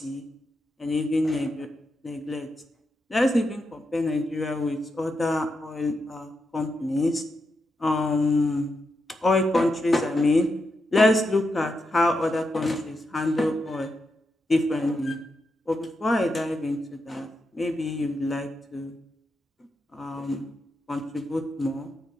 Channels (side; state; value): both; normal; correlation 0.85